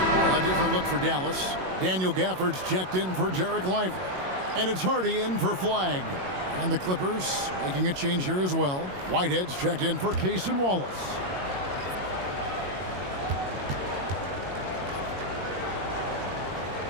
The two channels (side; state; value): left; late; 22 ms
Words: different look for Dallas. Daniel Gafford's checked in for Jarek Lively. And it's Hardy in for Flag. And the Clippers making a change here as well. Whitehead's checked in for Cason Wallace.